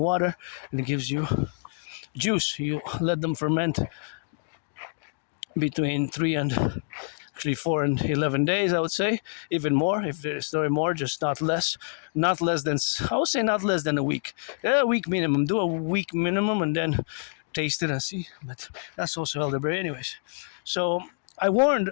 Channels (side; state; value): right; silent; digital silence